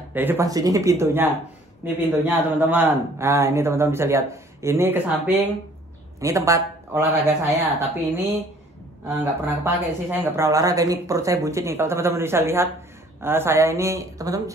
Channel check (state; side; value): normal; both; correlation 0.56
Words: Dari depan sini ini pintunya. Ini pintunya teman-teman. Nah, ini teman-teman bisa lihat. Ini ke samping. Ini tempat olahraga saya. Tapi ini nggak pernah kepake sih. Saya nggak pernah olahraga. Ini perut saya buncit nih. Kalau teman-teman bisa lihat, saya ini teman-teman